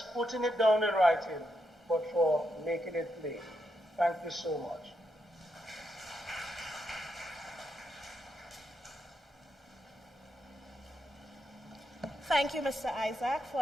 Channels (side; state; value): both; normal; correlation 0.83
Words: putting it down in writing, but for making it plain. Thank you so much. Thank you, Mr. Isaac, for